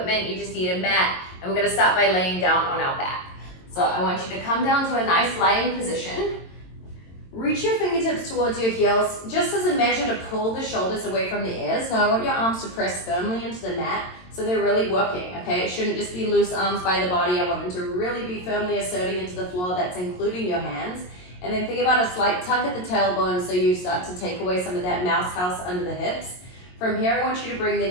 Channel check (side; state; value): right; late; 22 ms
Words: you just need a mat, and we're going to start by laying down on our back. So I want you to come down to a nice lying position. Reach your fingertips towards your heels, just as a measure to pull the shoulders away from the ears. Now I want your arms to press firmly into the mat so they're really working, okay? It shouldn't just be loose arms by the body. I want them to really be firmly asserting into the floor. That's including your hands. And then think about a slight tuck at the tailbone so you start to take away some of that mouse house under the hips. From here, I want you to bring the